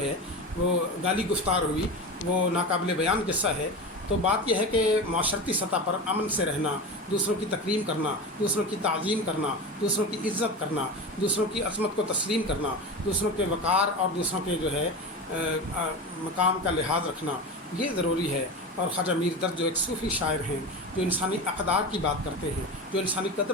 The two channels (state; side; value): normal; both; correlation 0.26